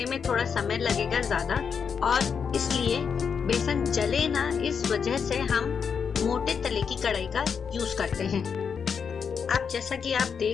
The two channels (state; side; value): quieter; right; 6.5 dB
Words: में थोड़ा समय लगेगा ज्यादा और इसलिए बेसन जले ना, इस वजह से हम मोटे तले की कढ़ाई का यूज करते हैं। आप जैसा कि आप